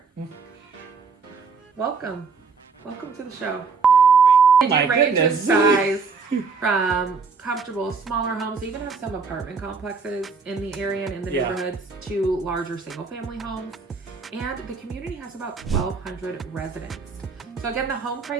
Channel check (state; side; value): quieter; left; 4.9 dB